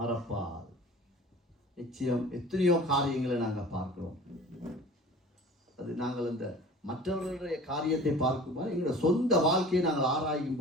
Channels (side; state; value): both; normal; correlation 0.43